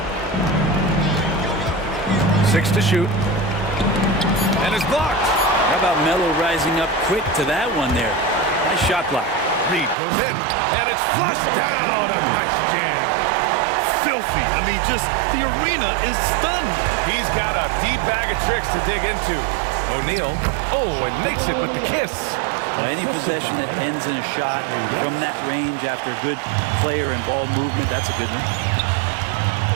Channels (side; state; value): left; drops out; at 10.0 s